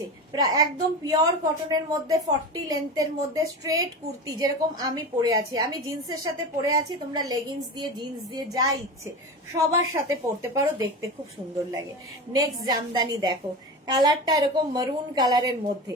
একদম পিওর কটনের মধ্যে 40 লেন্থের মধ্যে স্ট্রেট কুর্তি, যেরকম আমি পরে আছি। আমি জিন্সের সাথে পরে আছি, তোমরা লেগিংস দিয়ে জিন্স দিয়ে যা ইচ্ছে সবার সাথে পরতে পারো, দেখতে খুব সুন্দর লাগে। নেক্সট জামদানি দেখো, কালারটা এরকম মারুন কালারের মধ্যে।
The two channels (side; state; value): both; normal; correlation 0.26